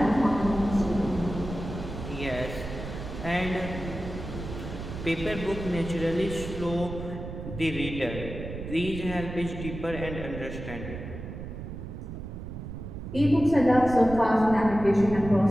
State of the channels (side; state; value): right; noise; rumble, 9 dB below the sound